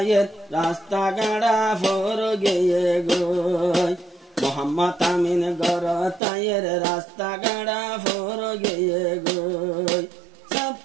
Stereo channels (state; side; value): drops out; left; at 6.2 s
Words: রাস্তা গাড়া ফর গিয়ে গো মোহাম্মদ আমিন গরাতায়ের রাস্তা গাড়া ফর গিয়ে গো